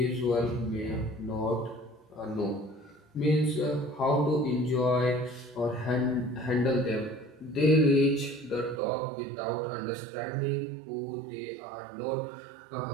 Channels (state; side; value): drops out; left; at 8.8 s